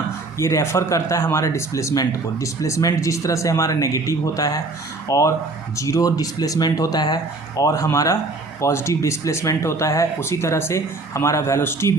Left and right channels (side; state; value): left; quieter; 3.3 dB